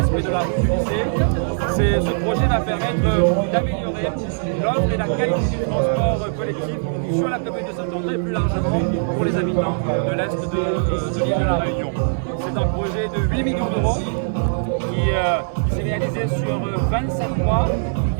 de la rue du lycée. Ce projet va permettre d'améliorer l'offre et la qualité du transport collectif sur la commune de Saint-André et plus largement pour les habitants de l'Est de l'île de la Réunion. C'est un projet de 8 millions d'euros qui s'est réalisé sur 27 mois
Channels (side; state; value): left; silent; digital silence